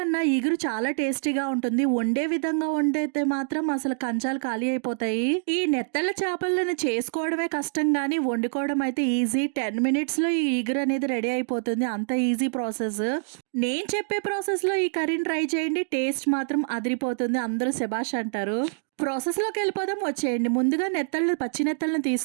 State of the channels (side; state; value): left; silent; digital silence